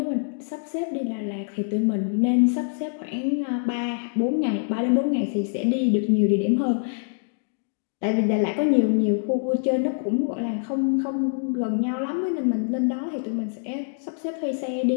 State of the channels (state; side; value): silent; right; digital silence